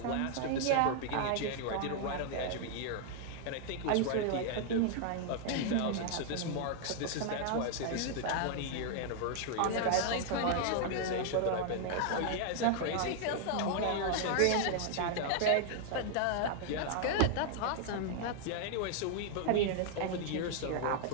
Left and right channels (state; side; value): different; both; correlation 0.00